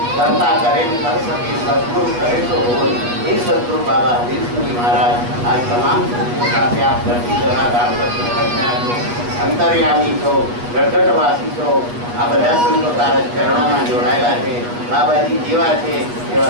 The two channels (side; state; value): left; late; 8.4 ms